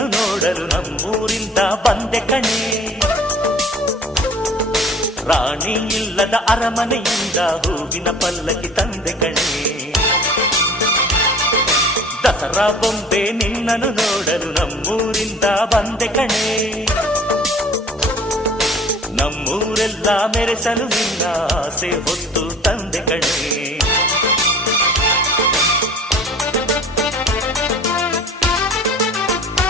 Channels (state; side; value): normal; both; correlation 0.46